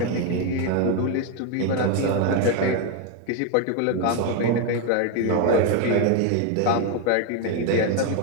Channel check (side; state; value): both; different; correlation 0.02